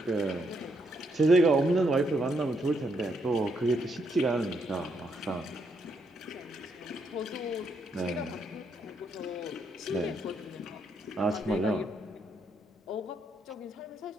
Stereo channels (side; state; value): both; normal; correlation 0.76